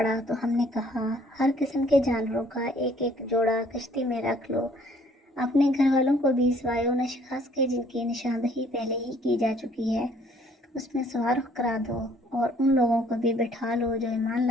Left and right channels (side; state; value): both; normal; correlation 0.60